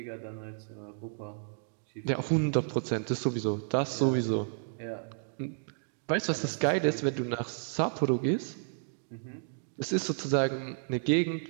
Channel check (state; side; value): silent; left; digital silence